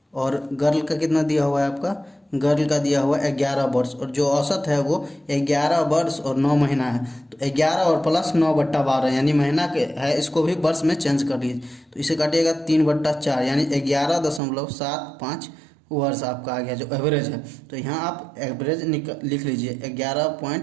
और गर्ल का कितना दिया हुआ है आपका, गर्ल का दिया हुआ है 11 वर्ष, और जो औसत है वो 11 वर्ष और 9 महीना है। तो 11 और प्लस 9/12 यानी महीना के है, इसको भी वर्ष में चेंज कर लीजिए तो इसे काटिएगा 3/4 यानी 11.75 वर्ष आपका आ गया जो एवरेज है। तो यहाँ आप एवरेज लिख लीजिए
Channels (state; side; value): drops out; left; at 14.4 s